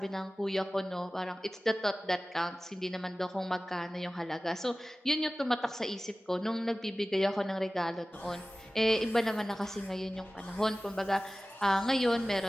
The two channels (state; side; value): normal; both; correlation 0.97